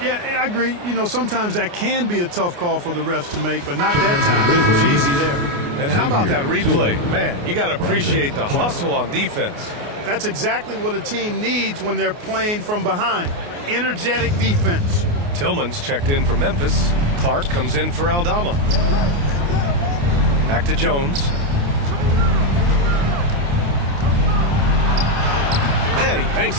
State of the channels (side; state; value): left; late; 29 ms